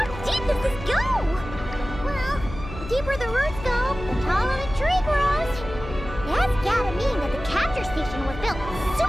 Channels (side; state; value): left; noise; hum, 11 dB below the sound